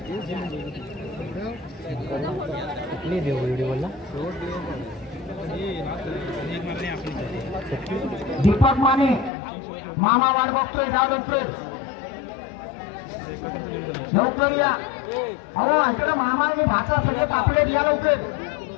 दीपक माने मामा वाट बघतोय. जा लवकर या. अहो इकडे मामा आणि भाचा सगळे तापले या लवकर.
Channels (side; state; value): right; drops out; at 9.3 s